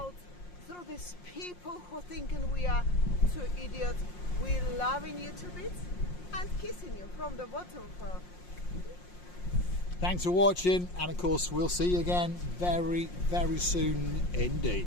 through these people who thinking we are two idiots. We're loving you to bits and kissing you from the bottom. Thanks for watching, and of course we'll see you again very, very soon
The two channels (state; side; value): late; right; 5.6 ms